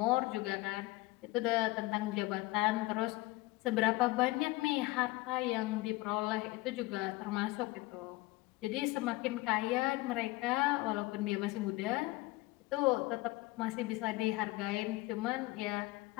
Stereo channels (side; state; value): right; quieter; 20.7 dB